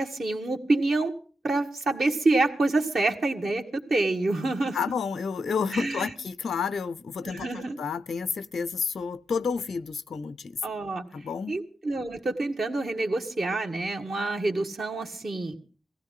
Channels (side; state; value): both; normal; correlation 0.86